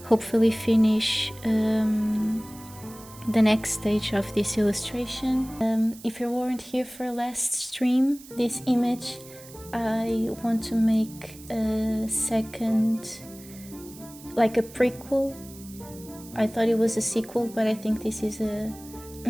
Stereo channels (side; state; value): right; noise; hiss, 19 dB below the sound